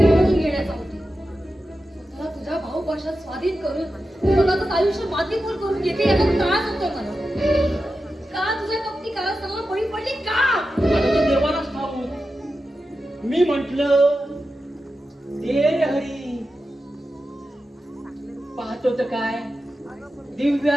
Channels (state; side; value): normal; both; correlation 0.91